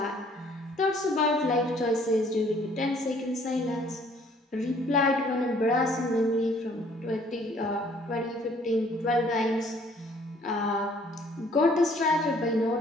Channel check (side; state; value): both; normal; correlation 0.59